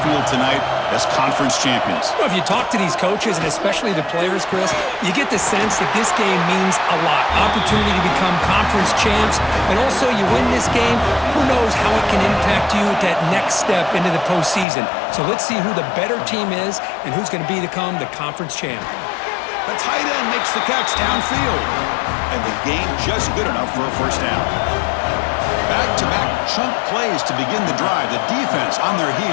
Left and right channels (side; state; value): right; drops out; at 14.7 s